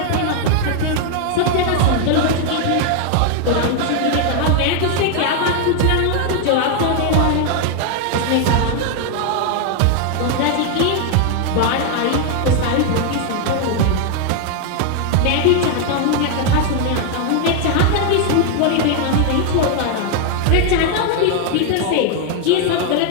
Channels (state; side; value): different; both; correlation 0.00